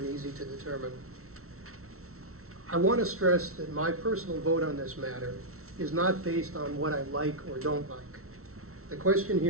easy to determine. I want to stress that my personal vote on this matter is not based on what I like or don't like. The question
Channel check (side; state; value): left; late; 0.63 ms